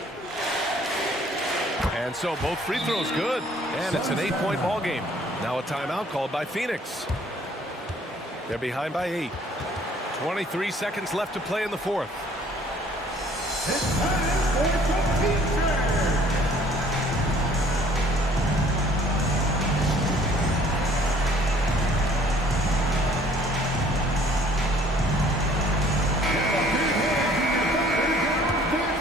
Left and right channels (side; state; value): both; normal; correlation 0.57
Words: And so both free throws good, and it's an 8-point ball game. Now a timeout called by Phoenix. They're behind by 8. 23 seconds left to play in the fourth. It's time for the future.